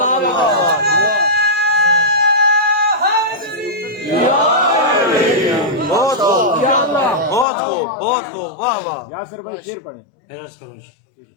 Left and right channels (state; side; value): drops out; right; at 7.5 s